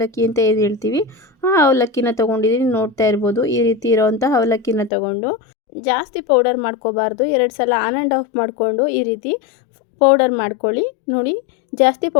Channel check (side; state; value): right; drops out; at 4.9 s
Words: ಅಂತ ಏನು ಹೇಳ್ತೀವಿ ಆ ಅವಲಕ್ಕಿನ ತೊಗೊಂಡಿದ್ದೀನಿ. ನೋಡ್ತಾ ಇರ್ಬೋದು, ಈ ರೀತಿ ಇರೋವಂಥ ಅವಲಕ್ಕಿನ ತೊಗೊಂಡು ಜಾಸ್ತಿ ಪೌಡರ್ ಮಾಡ್ಕೋಬಾರ್ದು. 2 ಸಲ ಆನ್ ಆ್ಯಂಡ್ ಆಫ್ ಮಾಡಿಕೊಂಡು ಈ ರೀತಿ ಪೌಡರ್ ಮಾಡ್ಕೊಳ್ಳಿ. ನೋಡಿ, ಜಾಸ್ತಿ